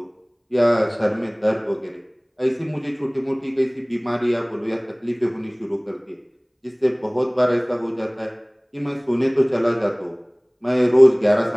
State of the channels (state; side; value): identical; both; correlation 1.00